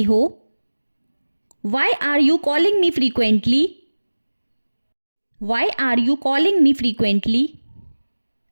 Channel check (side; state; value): both; inverted; correlation -1.00